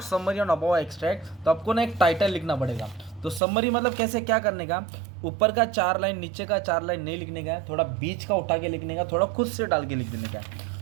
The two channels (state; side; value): drops out; left; at 3.4 s